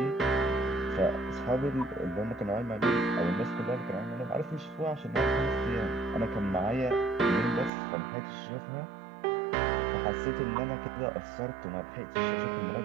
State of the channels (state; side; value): drops out; left; at 7.7 s